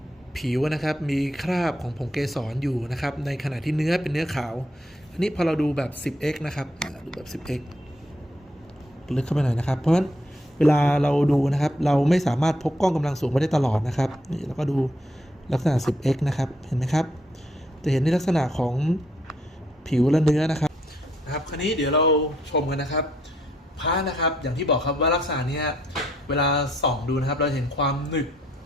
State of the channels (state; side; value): normal; both; correlation 0.72